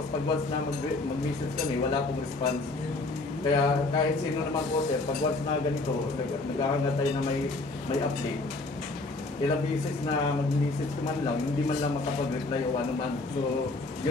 pag once na mag-message kami, wala pong response. Kaya kahit sino naman po sir, pag once na ganito, naghahangad tayo na may update. Ilang beses na mag-message ko man lang, hindi man lang makapag-reply o ano man. So,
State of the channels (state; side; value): quieter; right; 3.2 dB